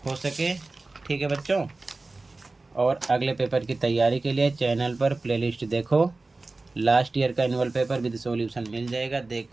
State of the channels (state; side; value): quieter; left; 3.3 dB